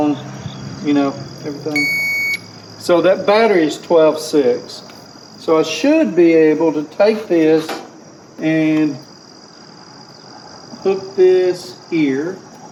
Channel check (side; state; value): both; identical; correlation 1.00